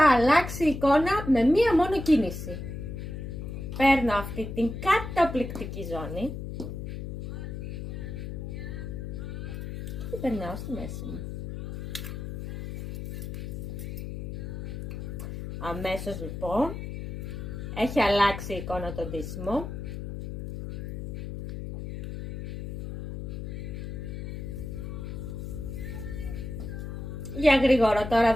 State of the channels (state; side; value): noise; left; hum, 7 dB below the sound